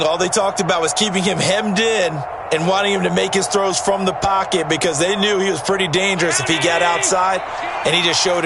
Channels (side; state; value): both; identical; correlation 1.00